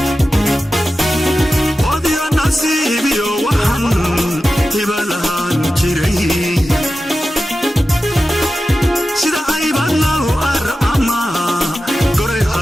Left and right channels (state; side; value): normal; both; correlation 0.93